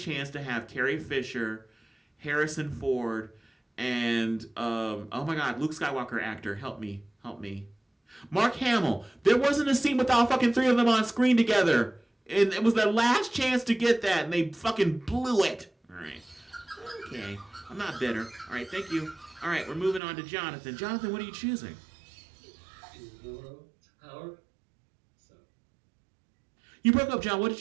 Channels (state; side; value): drops out; left; at 20.0 s